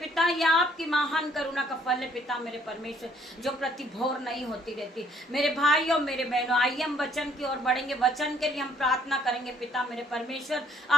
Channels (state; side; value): normal; both; correlation 0.63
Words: यह आपकी महान करुणा का फल है पिता मेरे परमेश्वर, जो प्रति भोर नहीं होती रहती। मेरे भाइयों मेरे बहनों, आइए हम वचन की ओर बढ़ेंगे। वचन के लिए हम प्रार्थना करेंगे पिता मेरे परमेश्वर।